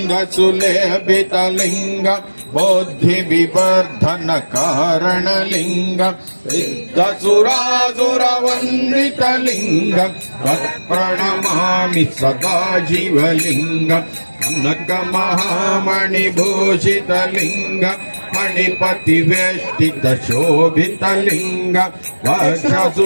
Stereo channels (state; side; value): inverted; both; correlation -1.00